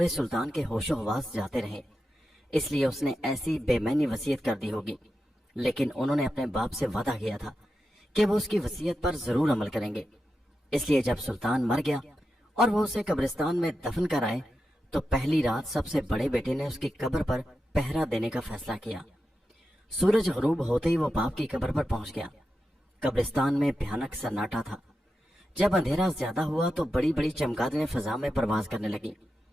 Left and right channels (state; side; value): normal; both; correlation 0.89